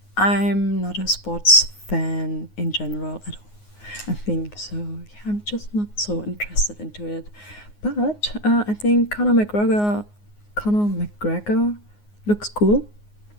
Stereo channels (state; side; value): late; right; 9.6 ms